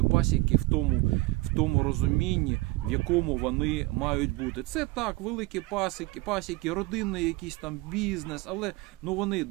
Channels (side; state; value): left; quieter; 21.7 dB